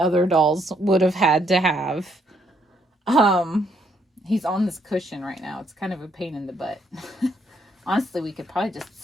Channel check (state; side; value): normal; both; correlation 0.72